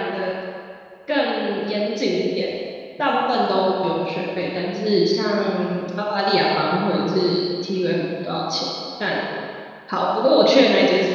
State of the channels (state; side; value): identical; both; correlation 1.00